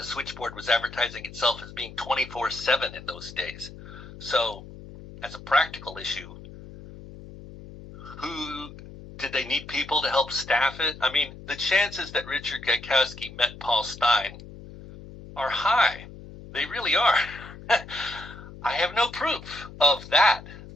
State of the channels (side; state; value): left; noise; hum, 16 dB below the sound